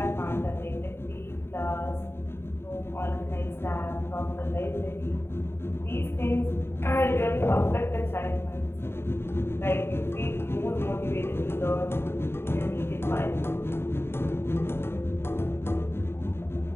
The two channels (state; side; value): late; right; 0.11 ms